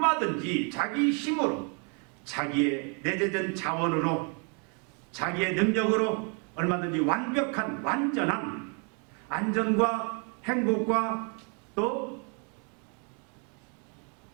자기 힘으로 자기의 내재된 자원으로 자기의 능력으로 얼마든지 완벽한 완전한 안전과 행복과 또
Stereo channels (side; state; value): left; quieter; 37.3 dB